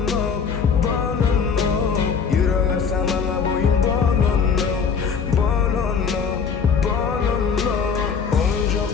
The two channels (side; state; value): right; quieter; 6.1 dB